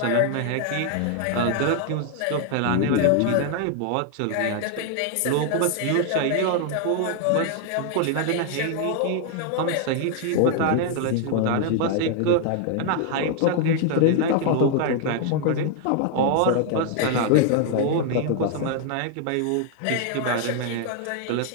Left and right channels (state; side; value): different; both; correlation 0.00